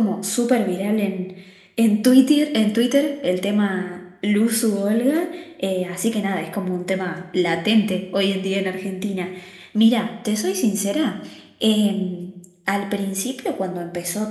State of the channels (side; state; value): both; identical; correlation 1.00